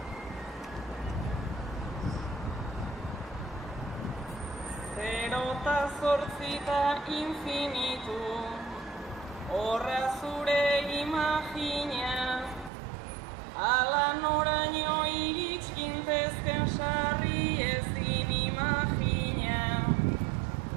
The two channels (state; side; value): drops out; left; at 12.7 s